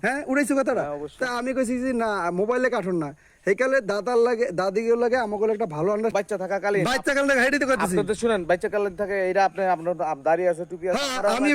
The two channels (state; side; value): identical; both; correlation 1.00